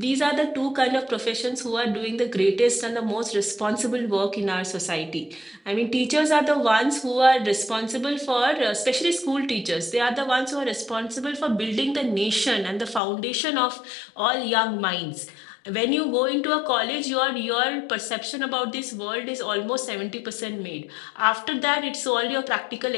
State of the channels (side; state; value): right; drops out; at 13.0 s